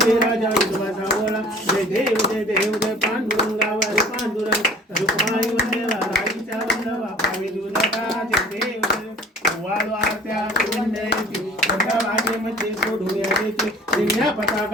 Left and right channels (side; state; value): both; normal; correlation 0.47